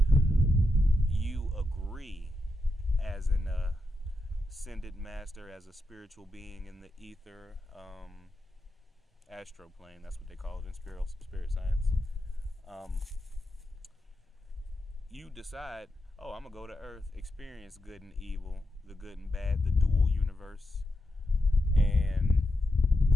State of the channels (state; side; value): normal; both; correlation 0.86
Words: You agree as an ascended master, as a spiritual being in the ether, astro plane, that's what they call it in spirit science. You decide, I'm going to go to Earth, experience good and evil, the good and bad, the dual universe, and